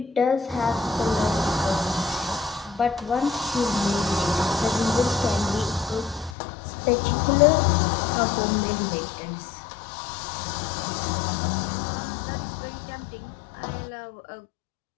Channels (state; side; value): drops out; right; at 6.4 s